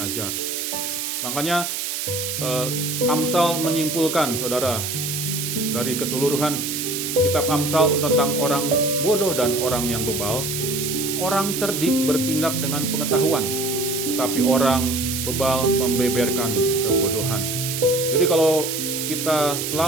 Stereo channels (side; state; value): right; noise; hiss, 3 dB below the sound